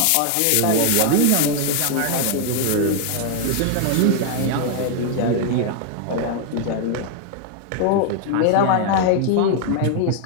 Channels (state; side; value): different; both; correlation 0.00